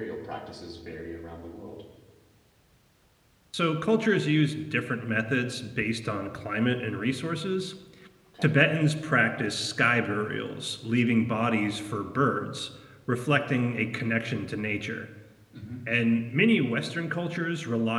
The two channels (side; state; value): both; identical; correlation 1.00